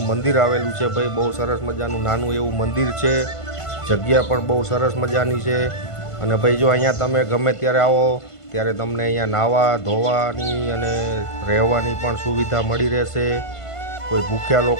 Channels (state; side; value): late; right; 1.5 ms